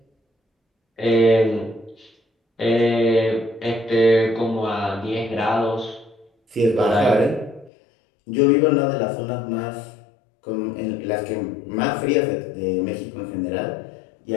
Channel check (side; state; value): right; drops out; at 7.7 s